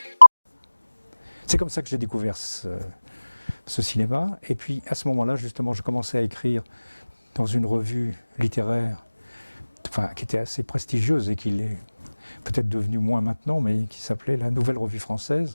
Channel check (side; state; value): both; inverted; correlation -1.00